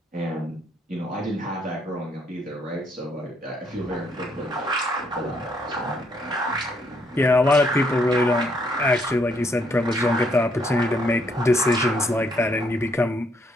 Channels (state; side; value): normal; both; correlation 0.71